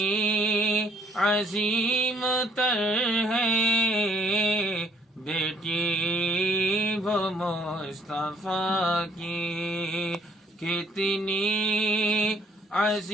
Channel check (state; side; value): normal; both; correlation 0.62